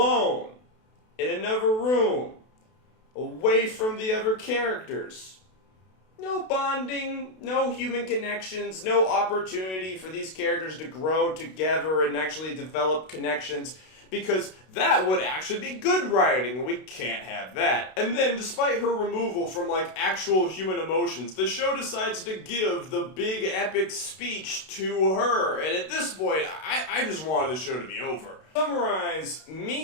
In another room, away from the other characters. No bonding, no human connections, no opportunity for these characters to grow together and actually develop connections, because that would actually be good writing, and we can't have that. And then, despite her removal from, like, actual human emotions, the show decides to give the big epic speech to her, and at this point, I just wanted the show to be over. To summarize,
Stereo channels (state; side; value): late; right; 32 ms